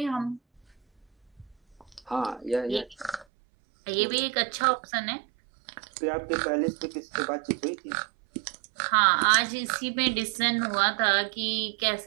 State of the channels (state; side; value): drops out; left; at 3.2 s